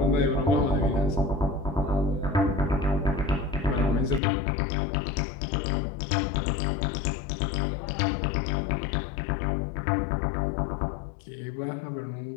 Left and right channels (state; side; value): drops out; right; at 4.2 s